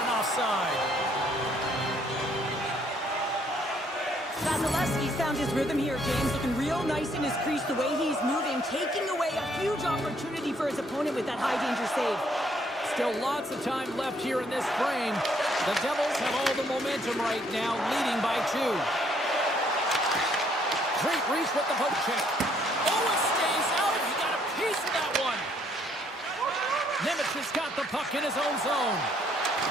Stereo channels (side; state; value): both; normal; correlation 0.67